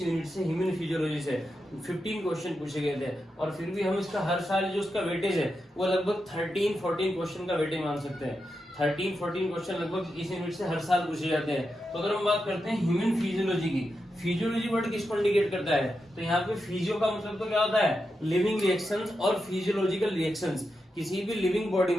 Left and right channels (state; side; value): normal; both; correlation 0.87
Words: यूनिट से ह्यूमन फिजियोलॉजी से 15 क्वेश्चन पूछे गए थे, और फिर भी हम इसका हर साल जो उसका वेटेज है वो लगभग 13-14 क्वेश्चन का वेटेज मान सकते हैं। 13-14 क्वेश्चन लगभग इस यूनिट से हर साल पूछे जाते हैं। तो अगर हम बात करते हैं ह्यूमन फिजियोलॉजी की, फिजियोलॉजी वर्ड किसको इंडिकेट करता है, तो यहाँ पे फिजियो का मतलब तो क्या होता है, लिविंग रिएक्शंस, और फिजियोलॉजिकल रिएक्शंस। किसी भी लिविंग बॉडी